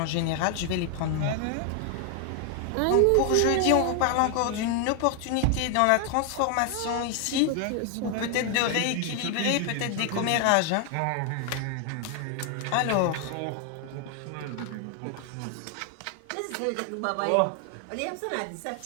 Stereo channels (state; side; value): different; both; correlation 0.00